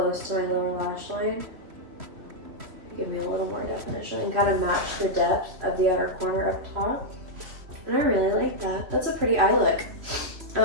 to my lower lash line. Give me a little more definition and kind of match the depth of the outer corner up top. And I really like that. That's a pretty eye look.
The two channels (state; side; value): late; left; 3.1 ms